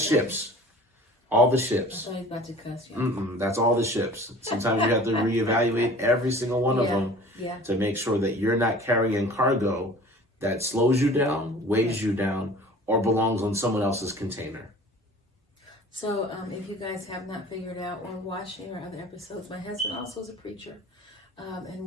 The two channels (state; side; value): normal; both; correlation 0.44